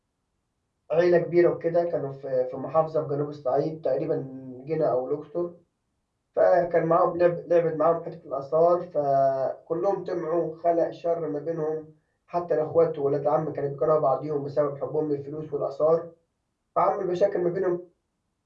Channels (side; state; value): both; identical; correlation 1.00